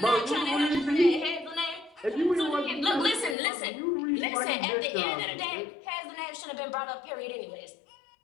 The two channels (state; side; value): drops out; right; at 3.4 s